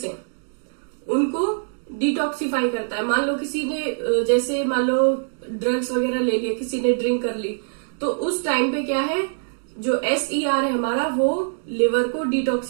है उनको डिटॉक्सिफाई करता है। मान लो किसी ने, जैसे मान लो ड्रग्स वगैरह ले लिया, किसी ने ड्रिंक कर ली, तो उस टाइम पे क्या है, जो SER है हमारा वो लिवर को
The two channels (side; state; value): left; silent; digital silence